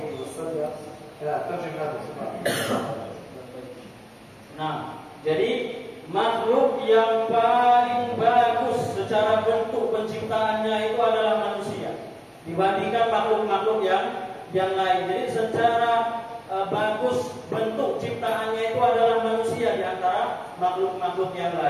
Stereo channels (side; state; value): both; identical; correlation 1.00